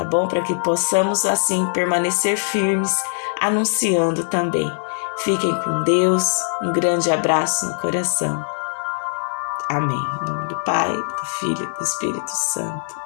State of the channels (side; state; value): right; silent; 65 dB below the other